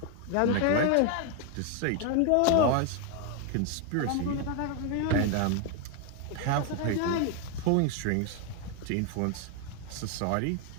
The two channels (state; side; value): different; both; correlation 0.01